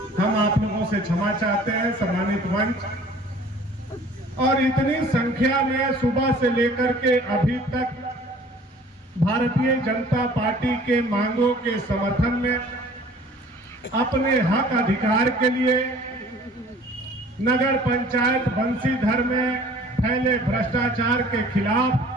हम आप लोगों से क्षमा चाहते हैं, सम्मानित मंच। और इतनी संख्या में सुबह से लेकर के अभी तक भारतीय जनता पार्टी के मांगों के समर्थन में, अपने हक अधिकार के लिए नगर पंचायत बंसीधर में फैले भ्रष्टाचार के खिलाफ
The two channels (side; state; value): both; normal; correlation 0.50